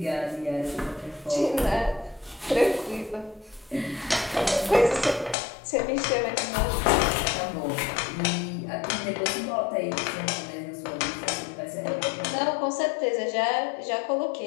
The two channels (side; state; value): right; drops out; at 5.4 s